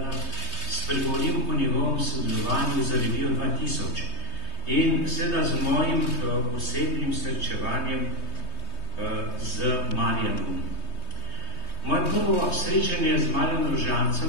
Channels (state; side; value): late; right; 3.2 ms